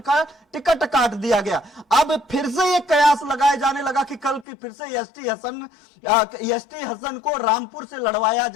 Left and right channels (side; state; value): right; drops out; at 4.5 s